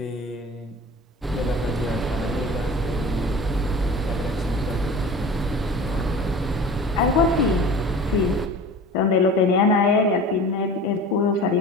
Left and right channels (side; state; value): both; normal; correlation 0.38